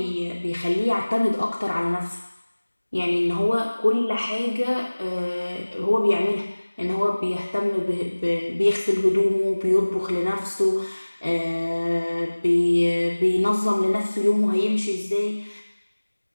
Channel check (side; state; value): both; inverted; correlation -1.00